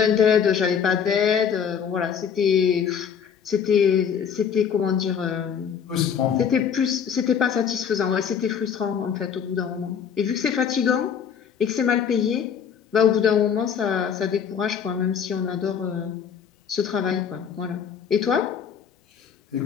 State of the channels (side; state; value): right; quieter; 7.5 dB